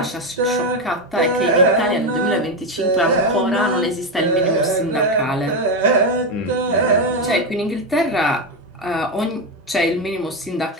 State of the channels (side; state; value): both; normal; correlation 0.10